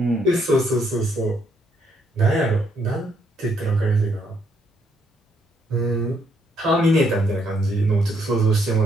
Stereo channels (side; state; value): both; normal; correlation 0.72